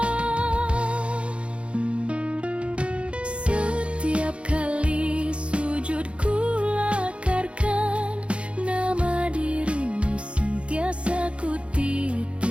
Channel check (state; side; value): late; left; 0.059 ms